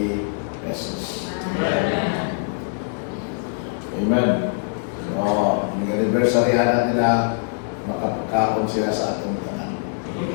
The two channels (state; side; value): silent; right; digital silence